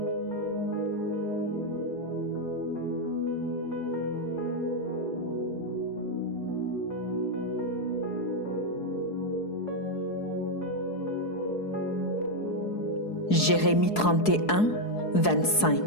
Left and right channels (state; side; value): late; right; 4.7 ms